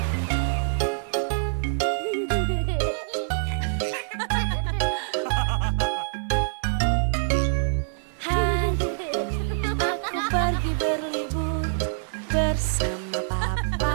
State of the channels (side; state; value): left; silent; digital silence